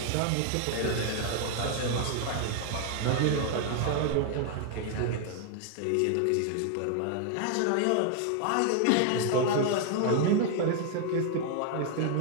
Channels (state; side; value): different; both; correlation 0.00